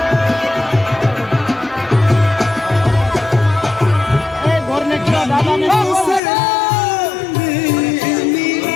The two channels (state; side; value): drops out; right; at 6.2 s